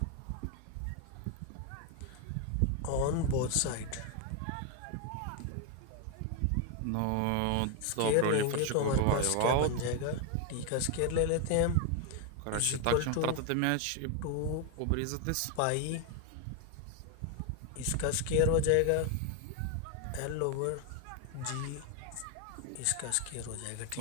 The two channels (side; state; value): both; different; correlation 0.01